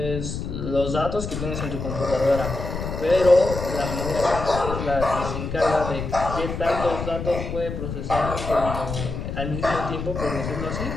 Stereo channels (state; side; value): noise; left; rumble, 5 dB below the sound